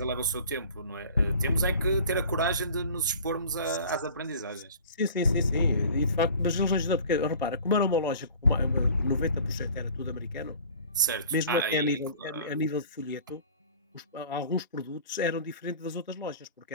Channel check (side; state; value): both; inverted; correlation -0.44